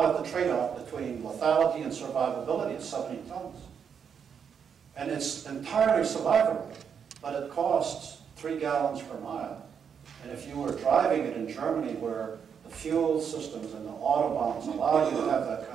at the trade-off between lethality and survivability at 70 tons. And it's entirely survivable, but it costs 3 gallons per mile. And if you were driving it in Germany where the fuel systems and the autobahns allow you to have that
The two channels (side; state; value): left; quieter; 7.2 dB